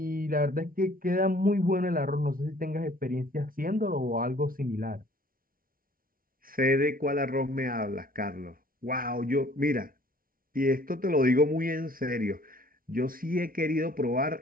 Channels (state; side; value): late; left; 0.42 ms